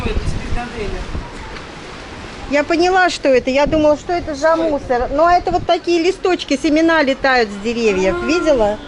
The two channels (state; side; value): identical; both; correlation 1.00